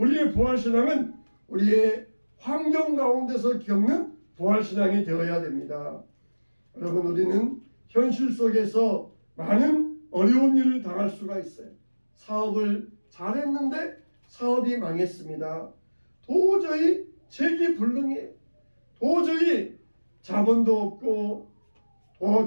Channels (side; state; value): both; inverted; correlation -1.00